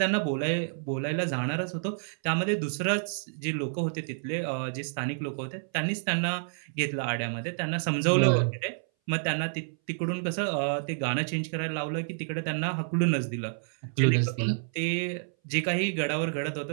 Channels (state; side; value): silent; left; 58 dB below the other